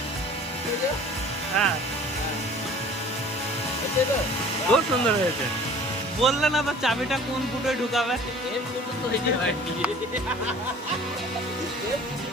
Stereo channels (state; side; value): normal; both; correlation 0.47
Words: হ্যাঁ, খুব সুন্দর হয়েছে। বললে না তো চাবিটা কোন ফুটোয় ঢুকাবে?